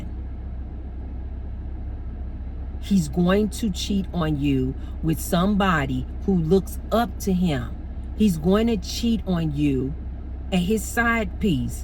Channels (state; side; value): identical; both; correlation 1.00